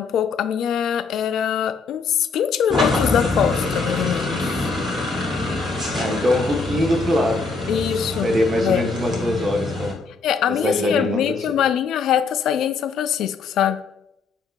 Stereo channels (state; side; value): quieter; right; 4.4 dB